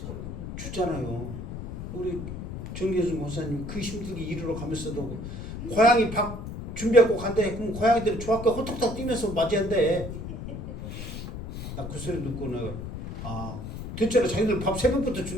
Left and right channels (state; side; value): noise; left; rumble, 8 dB below the sound